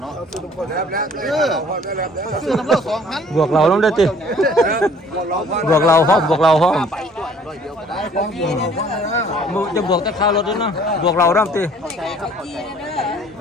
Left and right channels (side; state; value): both; normal; correlation 0.55